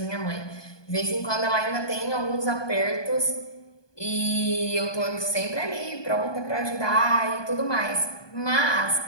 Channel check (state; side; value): late; right; 1.2 ms